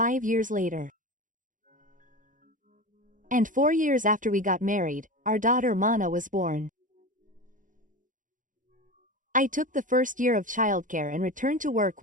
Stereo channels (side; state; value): left; late; 0.38 ms